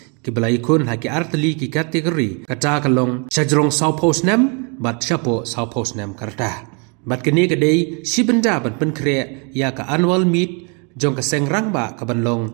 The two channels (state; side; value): quieter; left; 35.0 dB